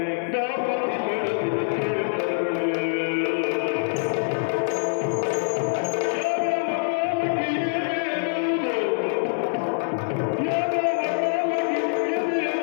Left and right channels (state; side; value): silent; right; digital silence